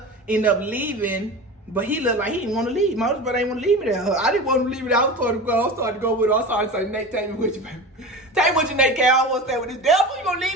ended up leaving, but he looked like he didn't want to leave. My other brother didn't want to leave me there. I didn't want to leave me there. I was starting to go with her. I started to say, Nate, take me with you, baby. Take me with you, Nate. I don't want to stay with this devil. You gonna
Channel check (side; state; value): both; normal; correlation 0.31